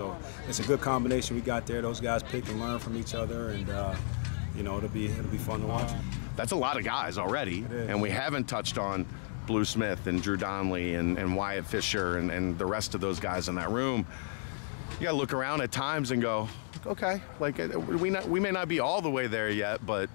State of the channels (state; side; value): silent; right; digital silence